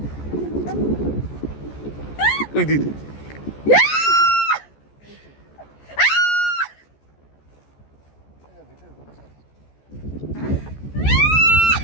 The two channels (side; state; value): right; late; 14 ms